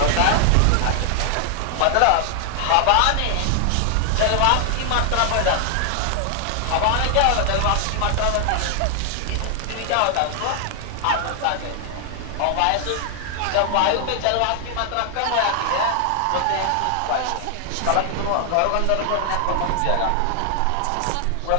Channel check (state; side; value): different; both; correlation 0.00